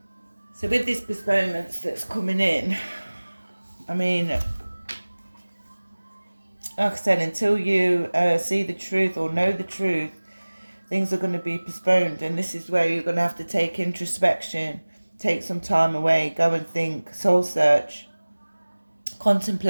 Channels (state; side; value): inverted; both; correlation -1.00